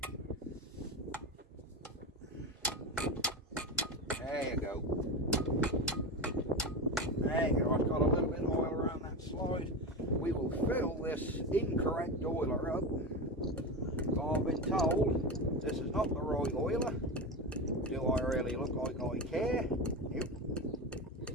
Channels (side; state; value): both; normal; correlation 0.20